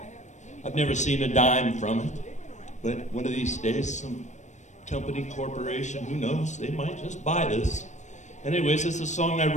I've never seen a dime from it. But one of these days, some company, corporation, who knows, they might just buy this. Anyways, it's a song I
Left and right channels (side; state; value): right; late; 0.34 ms